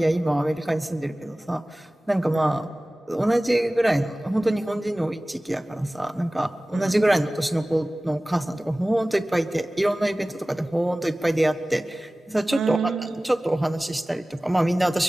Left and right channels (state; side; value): normal; both; correlation 0.98